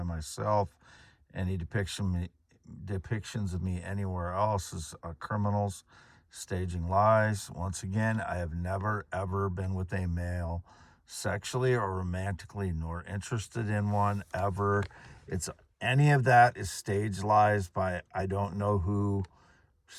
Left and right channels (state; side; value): identical; both; correlation 1.00